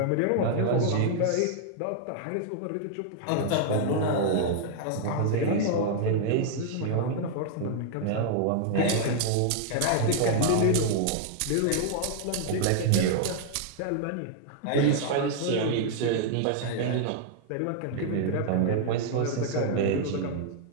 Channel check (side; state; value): both; different; correlation -0.01